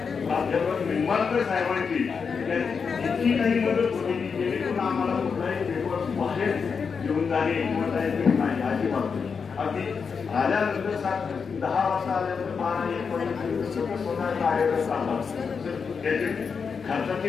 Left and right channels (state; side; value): quieter; right; 5.8 dB